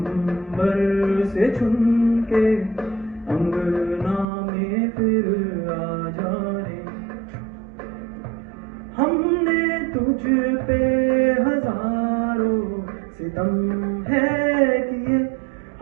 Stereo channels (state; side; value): drops out; left; at 4.2 s